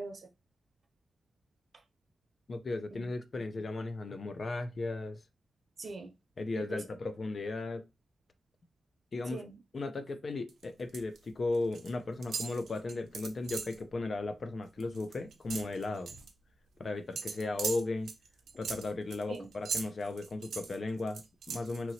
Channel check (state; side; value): normal; both; correlation 0.90